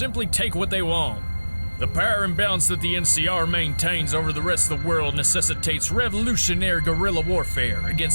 take what they want. The power imbalance that the NCR maintains over the rest of the world necessitates revolutionary guerrilla warfare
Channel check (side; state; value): both; inverted; correlation -1.00